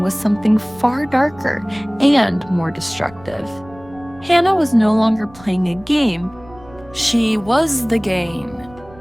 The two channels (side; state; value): right; noise; rumble, 23 dB below the sound